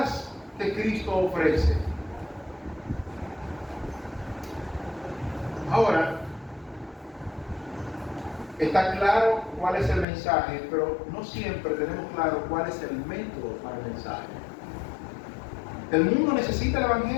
que Cristo ofrece. Ahora, está claro cuál es el mensaje, pero no siempre tenemos claro cuál es el método para el mensaje. El mundo necesita el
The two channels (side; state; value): right; drops out; at 10.1 s